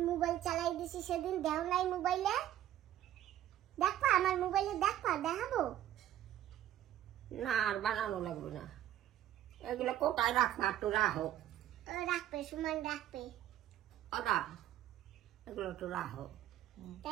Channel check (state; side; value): quieter; left; 12.2 dB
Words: মোবাইল চালাই দিছি সেদিন দেখো নাই? মোবাইলে দেখবা, আমার মোবাইলে দেখবা, দেখাবো না আর বানানো লাগবে না, এগুলো কোথায় রাখবা? একটু রাখো। রাখবে, সুমন রাখবে। ওদা এগুলো একটু রাখো।